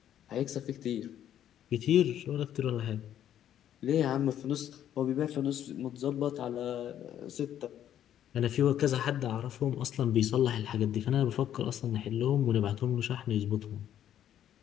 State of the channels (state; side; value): quieter; right; 10.7 dB